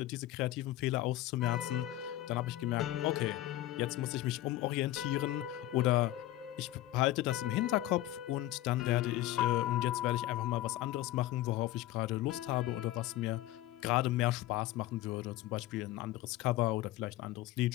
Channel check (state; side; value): quieter; right; 15.2 dB